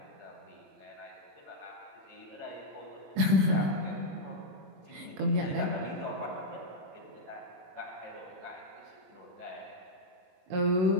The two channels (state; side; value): late; left; 22 ms